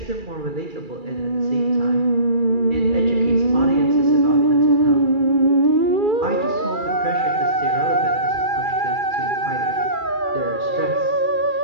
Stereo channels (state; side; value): late; left; 2.3 ms